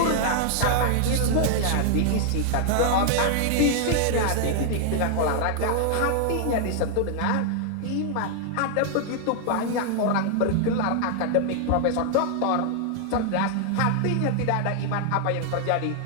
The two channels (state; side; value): different; both; correlation 0.00